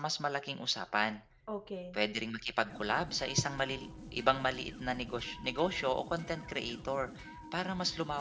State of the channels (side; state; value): both; identical; correlation 1.00